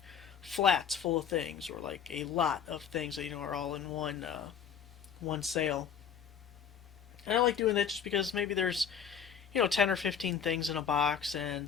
flats full of things or like a lot of things that are all in one sale. And I like doing that just because maybe there's 10 or 15 things in a box,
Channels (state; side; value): quieter; right; 7.6 dB